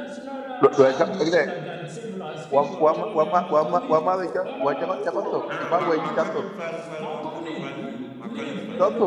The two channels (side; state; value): both; identical; correlation 1.00